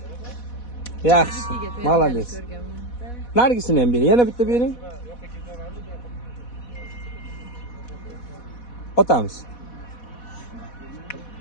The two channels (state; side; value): late; right; 4.1 ms